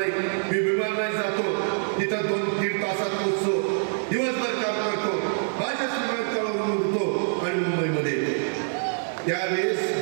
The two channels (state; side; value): silent; left; digital silence